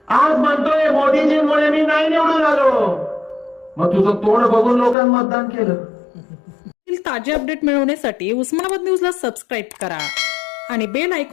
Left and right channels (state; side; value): drops out; right; at 5.0 s